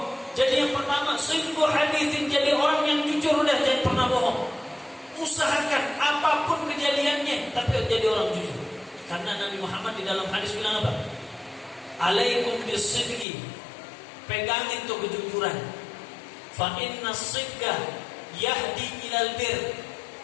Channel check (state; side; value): drops out; right; at 13.2 s